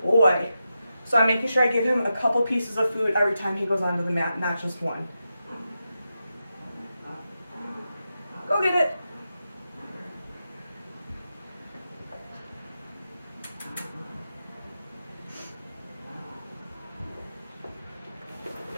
boy. So I'm making sure I give him a couple pieces of food every time he goes onto the mat, not just one. Go get it.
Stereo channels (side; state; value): both; inverted; correlation -0.89